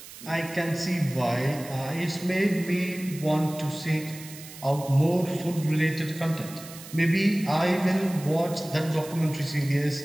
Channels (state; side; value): noise; right; hiss, 16 dB below the sound